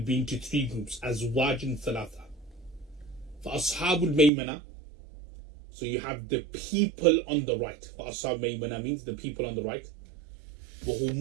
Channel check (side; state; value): left; drops out; at 4.3 s